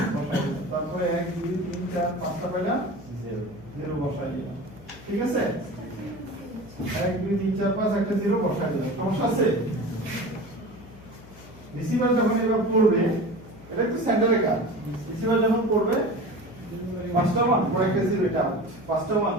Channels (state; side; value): noise; left; hum, 20 dB below the sound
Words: বসাই দিলাম তারপরে 1 2 3 4 5টা পাইলাম 0 0 বসাই দিলাম ঠিক আছে 1 2 3 4 5 একটা 0 বসাই দিলাম সমস্যা আছে রিসিভার যখন এবার পড়বে এটা একটু সেন্টারে কাজ রিসিভার যখন পড়বে পাঁচটা 1 পরে একটা 0 এটা পাঁচটা